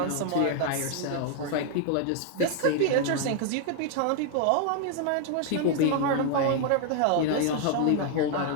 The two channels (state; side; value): different; both; correlation 0.00